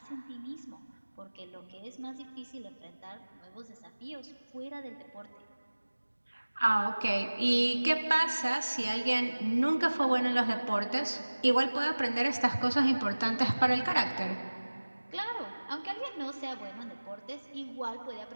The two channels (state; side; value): inverted; both; correlation -1.00